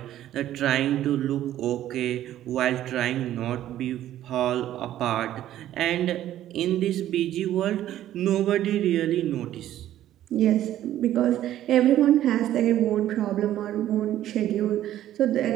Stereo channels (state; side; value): quieter; left; 12.6 dB